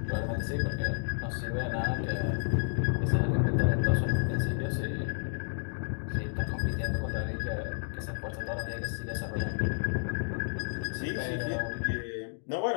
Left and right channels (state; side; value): silent; right; digital silence